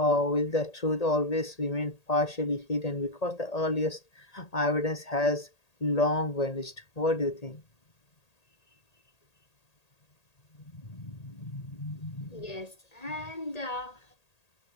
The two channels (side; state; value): right; late; 1.8 ms